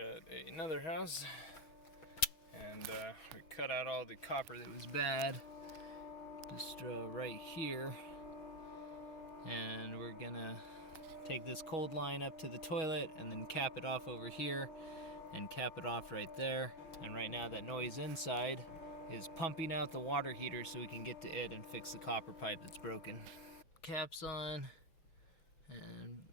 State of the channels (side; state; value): right; late; 6.2 ms